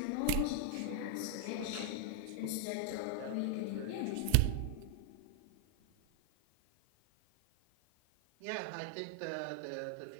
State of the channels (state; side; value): different; both; correlation 0.00